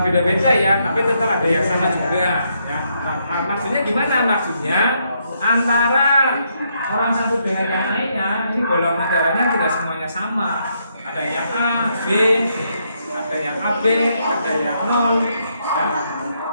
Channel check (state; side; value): inverted; both; correlation -0.76